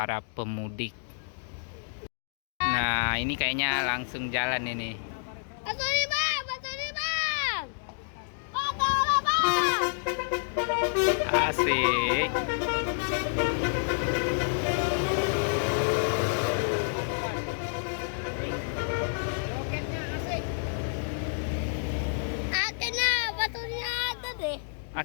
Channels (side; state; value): right; silent; digital silence